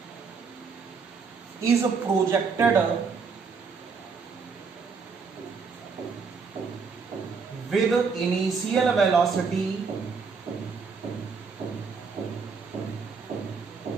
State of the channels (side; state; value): left; quieter; 5.2 dB